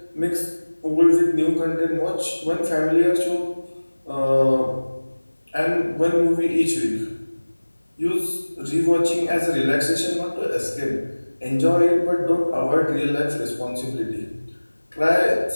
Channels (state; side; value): inverted; both; correlation -1.00